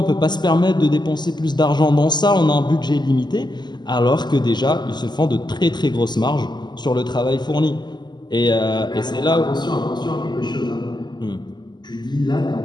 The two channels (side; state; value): right; late; 0.21 ms